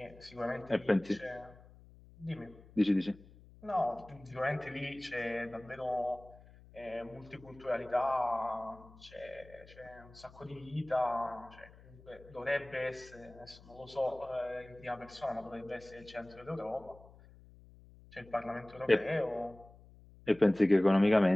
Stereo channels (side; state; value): left; noise; hum, 22 dB below the sound